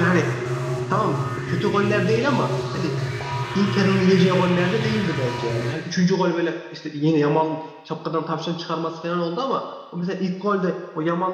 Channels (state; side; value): identical; both; correlation 1.00